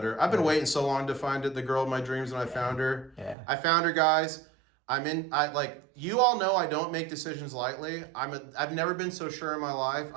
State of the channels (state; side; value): drops out; left; at 3.4 s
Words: I've been waiting so long to find the girl of my dreams, and I found her. Yeah. I found her, guys. You all know I don't make decisions lightly. I've never been so sure in my life.